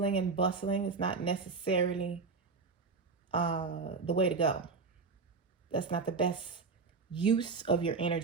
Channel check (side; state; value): left; quieter; 4.6 dB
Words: and bustling is not necessarily the way to go. That's not the best use of your